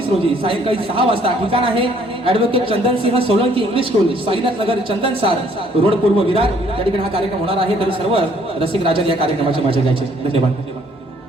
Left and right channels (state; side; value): normal; both; correlation 0.63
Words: रोजी सायंकाळी 6 वाजता ठिकाण आहे advocate Chandan Singh Solanki English school Sainath Nagar चंदन सार रोड पूर्व विरार या ठिकाणी हा कार्यक्रम होणार आहे तरी सर्व रसिक राजन या कार्यक्रमाची मजा घ्यायची धन्यवाद